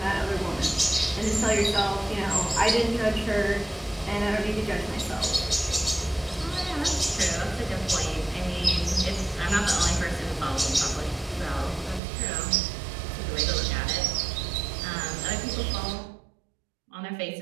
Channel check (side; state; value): left; drops out; at 12.0 s